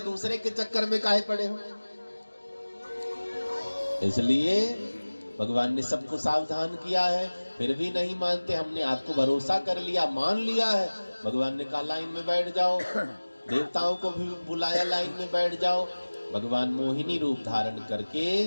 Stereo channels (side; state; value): both; inverted; correlation -1.00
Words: दूसरे के चक्कर में काहे पड़े हो। इसलिए भगवान ने सबको सावधान किया है, फिर भी नहीं मानते। हमने आपको भरोसा कर लिया, मान लिया है। भगवान ने कहा लाइन में बैठ जाओ, देवताओं को भी बुलाया, लाइन में बैठ जाओ। भगवान मोहिनी रूप धारण करके